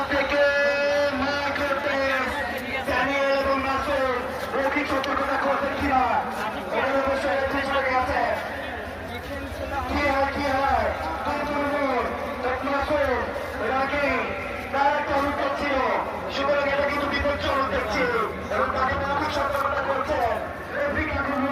থেকে এবং নাসুর মৌখিক সতর্কতা করতেন কিনা এটার অবশ্যই চেষ্টা গেছে কি হয় তার একটা অনুভব ছিল সুতরাং এটা কিন্তু বিপজ্জনক দেখছি এবং তাকে মৌখিক সতর্কতা করছেন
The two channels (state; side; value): identical; both; correlation 1.00